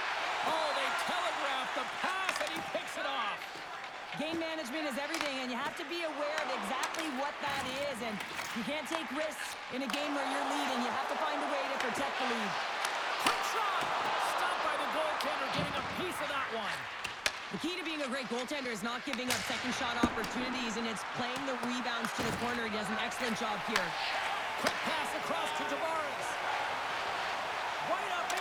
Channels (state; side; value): identical; both; correlation 1.00